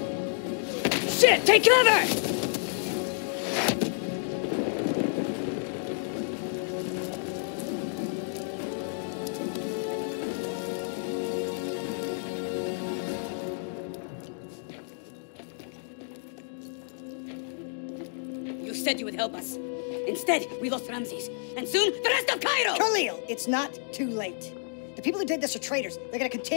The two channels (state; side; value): silent; right; digital silence